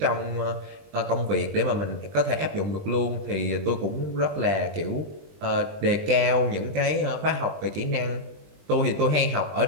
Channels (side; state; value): left; late; 20 ms